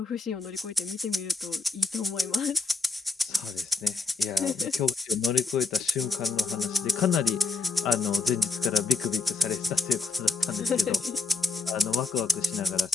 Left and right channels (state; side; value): quieter; right; 3.7 dB